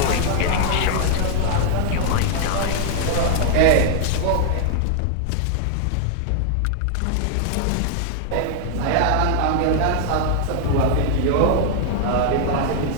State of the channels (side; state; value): both; different; correlation -0.01